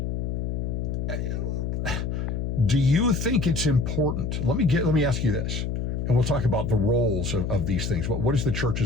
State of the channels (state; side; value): noise; left; hum, 2 dB below the sound